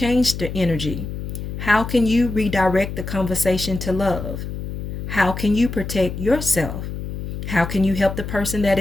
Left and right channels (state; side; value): noise; left; hum, 7 dB below the sound